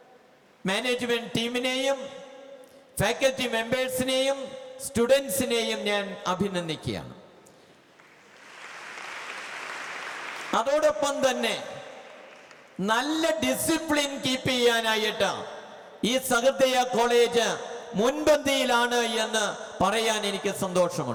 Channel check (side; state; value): both; identical; correlation 1.00